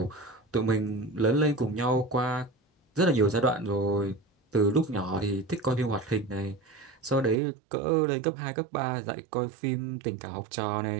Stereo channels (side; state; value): left; drops out; at 7.4 s